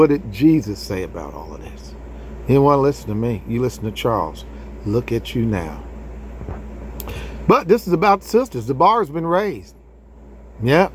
did Jesus say about all of this? You didn't want to listen to me. You listen to Charles. Look at you now. But this is about sisters. The bar has been raised. Yep.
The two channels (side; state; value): both; identical; correlation 1.00